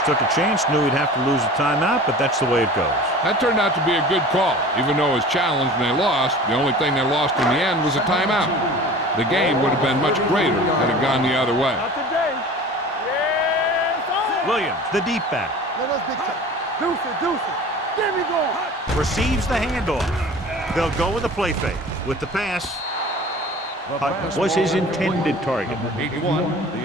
took a chance, knew he'd have to lose a timeout, but that's the way it goes. That turned out to be a good call. Even though it was challenged and they lost, the only thing they lost in the end was a timeout. The game would have been much greater had it gone the other way. Not today. Yes, sir. Williams, the deep back, Let us big time. Deuce it, deuce it. Get me going. receives the handoff. They'll go with the play fake. With the pass, Hutt was his intended target. 81,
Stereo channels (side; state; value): both; normal; correlation 0.41